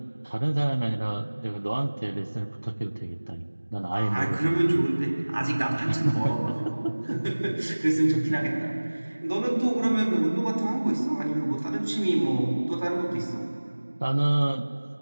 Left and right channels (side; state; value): both; inverted; correlation -1.00